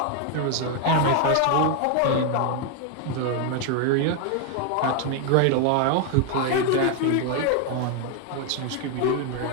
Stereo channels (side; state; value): both; different; correlation 0.00